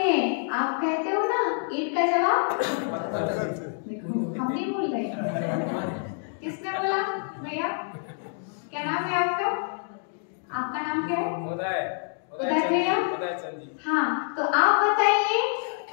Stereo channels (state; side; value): silent; right; 58 dB below the other